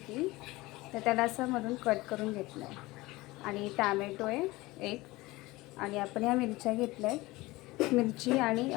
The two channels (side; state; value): right; quieter; 20.5 dB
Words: तर त्याला असं मधून कट करून घेतलं आहे. आणि टॅमॅटो आहे 1, आणि आपण ह्या मिरच्या घेतल्या आहेत. मिरची आणि